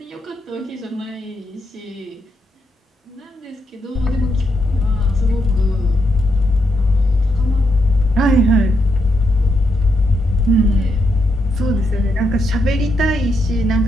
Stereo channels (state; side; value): normal; both; correlation 0.81